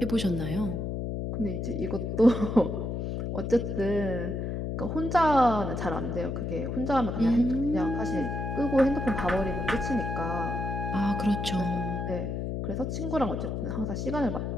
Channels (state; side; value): noise; left; hum, 3 dB below the sound